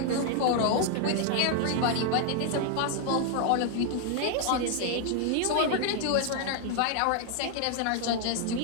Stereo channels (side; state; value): both; different; correlation 0.00